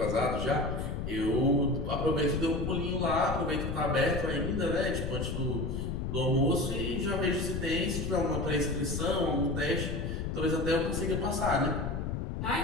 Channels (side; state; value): left; noise; rumble, 3 dB below the sound